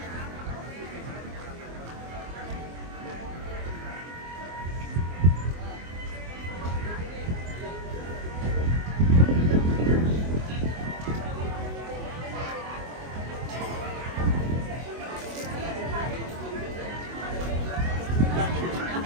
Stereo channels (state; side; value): late; left; 24 ms